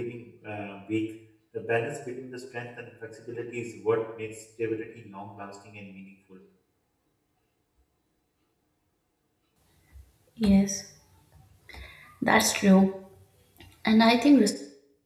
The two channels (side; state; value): both; identical; correlation 1.00